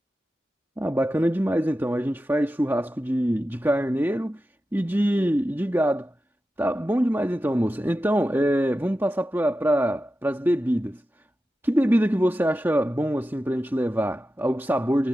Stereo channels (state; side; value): normal; both; correlation 0.92